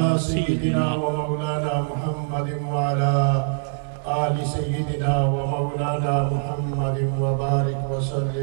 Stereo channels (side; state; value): left; silent; digital silence